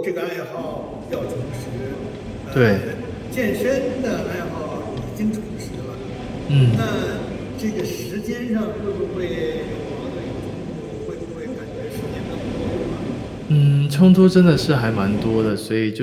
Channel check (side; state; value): both; identical; correlation 1.00